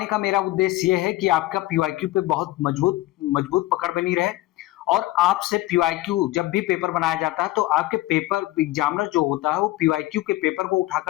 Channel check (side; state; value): right; quieter; 17.5 dB